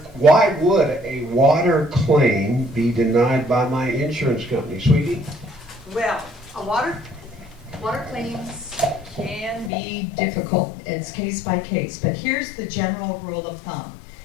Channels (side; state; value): right; drops out; at 9.7 s